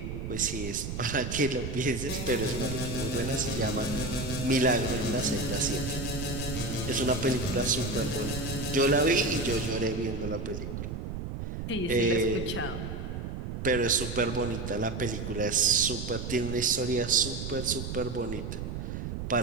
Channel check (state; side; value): noise; right; rumble, 5 dB below the sound